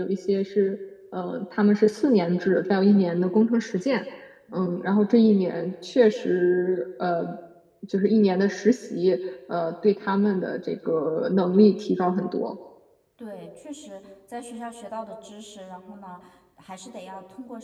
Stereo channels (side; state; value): both; identical; correlation 1.00